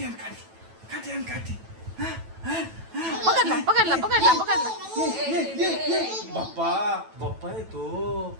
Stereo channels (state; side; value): late; left; 9.1 ms